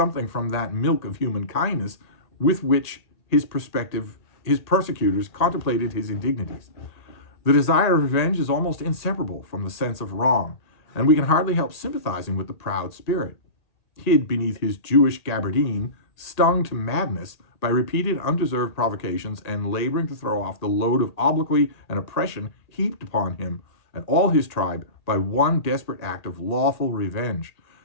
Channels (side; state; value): right; late; 1.8 ms